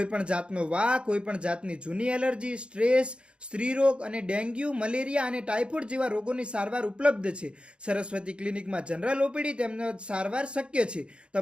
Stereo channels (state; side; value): late; left; 0.056 ms